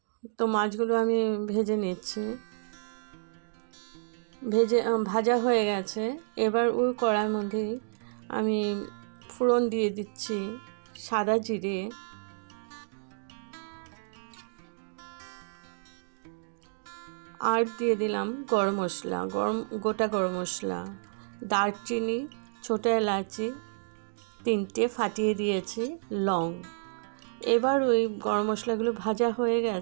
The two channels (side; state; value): left; silent; digital silence